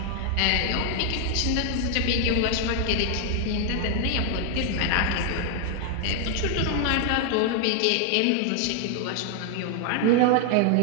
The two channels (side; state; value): both; different; correlation 0.00